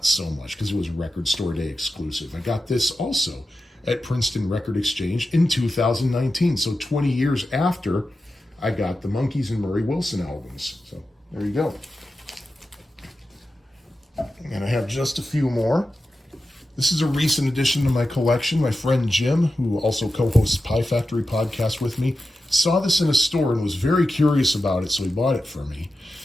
so much, because it was Record Store Day exclusive. I got this also at Princeton Record Exchange in 2019, so 20 years after I got the Monkees and Murray Wilson albums. So there you go. And I have just a few more. This is a recent addition to my collection. My friend Jim, who also co-hosts Pie Factory podcast with me, saw this in a store and was very curious about it, so he bought it for me.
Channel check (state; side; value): normal; both; correlation 0.92